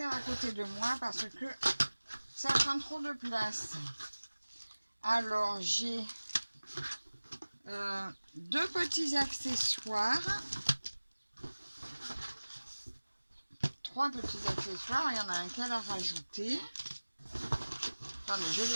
à côté de moi parce que ça prend trop de place. Alors, j'ai deux petits accessoires. Trois petits accessoires. Il y en a un qu'elle a rajouté. Attendez, je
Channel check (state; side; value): inverted; both; correlation -1.00